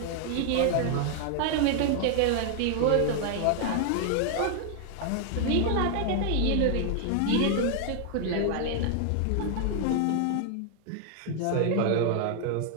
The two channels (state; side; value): different; both; correlation 0.00